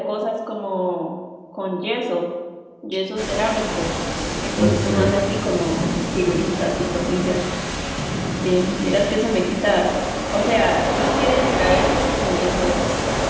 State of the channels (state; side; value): identical; both; correlation 1.00